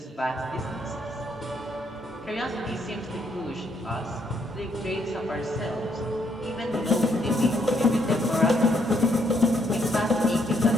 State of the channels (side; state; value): both; normal; correlation 0.72